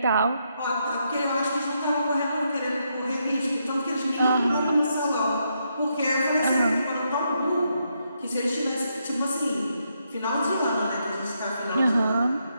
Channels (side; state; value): both; inverted; correlation -0.79